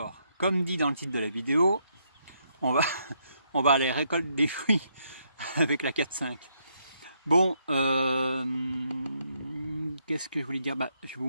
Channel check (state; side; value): inverted; both; correlation -0.76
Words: comme dit dans le titre de la vidéo, on va aller récolter des fruits avec la 4.5. Bon, qu'est-ce que je voulais dire? Je vous